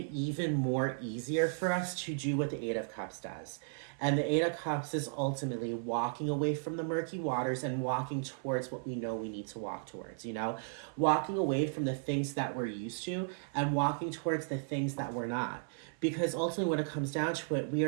even more easier for us to do what the Eight of Cups does. And the Eight of Cups is ultimately walking away from the murky waters and walking towards what we know we need to walk towards, you know? Walking away from the things that we're used to and walking towards the things that we're not. Because ultimately, when it comes down to it, we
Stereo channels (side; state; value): left; silent; 55 dB below the other